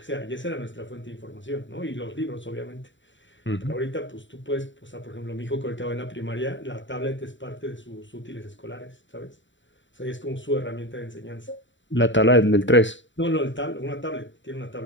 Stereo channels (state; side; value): late; right; 0.54 ms